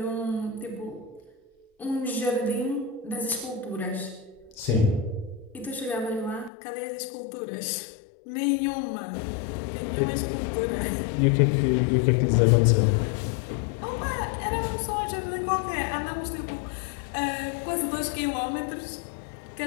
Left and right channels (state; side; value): drops out; right; at 6.5 s